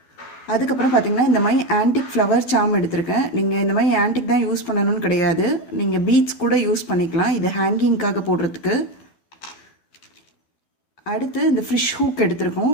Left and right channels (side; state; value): right; late; 12 ms